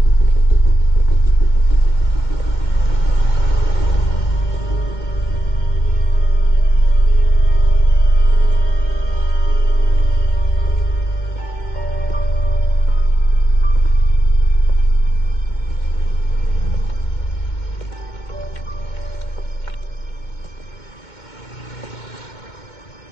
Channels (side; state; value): right; late; 2.2 ms